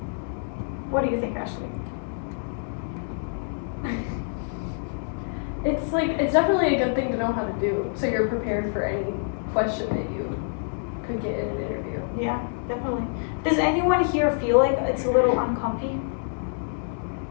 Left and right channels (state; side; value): silent; right; digital silence